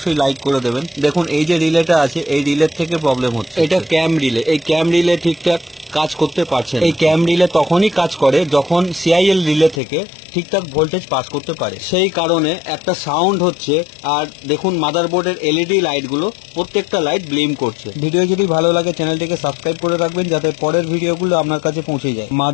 লাইক করে দেবেন। দেখুন এই যে রিলেটা আছে, এই রিলের থেকে প্রবলেম হচ্ছে। এটা ক্যাম রিলে, এই ক্যাম রিলে ঠিকঠাক কাজ করতে পারছে না। এই ক্যাম রিলে তখনই কাজ করে যখন সিআইএল রিলে থেকে ঠিকঠাক ভোল্টেজ পাস করতে পারে, সেই কারণে একটা সাউন্ড হচ্ছে। আর দেখুন মাদারবোর্ডের এলইডি লাইটগুলো প্রত্যেকটা লাইট ব্লিম করছে। ভিডিও যদি ভালো লাগে চ্যানেলটিকে সাবস্ক্রাইব করে রাখবেন, যাতে পরের ভিডিওগুলো আপনার কাছে পৌঁছে যায়।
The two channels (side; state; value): right; drops out; at 9.8 s